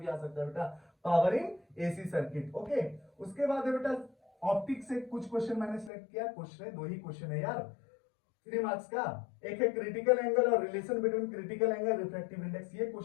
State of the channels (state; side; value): drops out; right; at 5.9 s